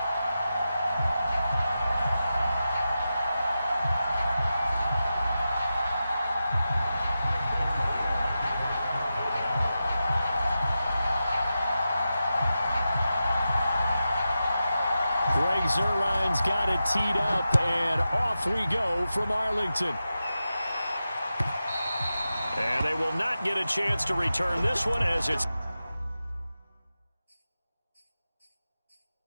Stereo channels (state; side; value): inverted; both; correlation -0.91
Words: Zerline's got it teed up, and off we go from Arlington. And they will not get a chance to return this one as it's...